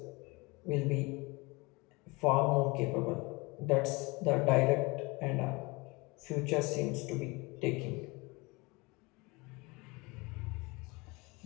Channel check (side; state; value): right; quieter; 25.5 dB